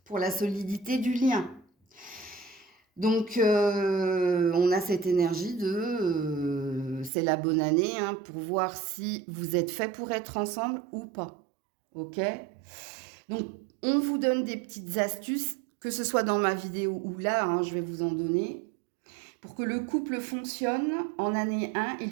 pour la solidité du lien. Donc, on a cette énergie c'est la bonne année, hein, pour voir si vous êtes fait pour être ensemble ou pas. Ok? Donc, on vous donne des petites astuces, que ce soit dans ma vidéo ou là, hein, je vais vous en donner. Pour que le couple fonctionne, en année 1, il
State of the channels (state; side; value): drops out; left; at 7.1 s